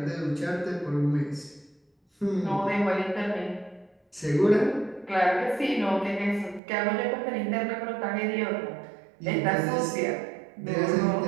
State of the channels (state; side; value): drops out; left; at 6.6 s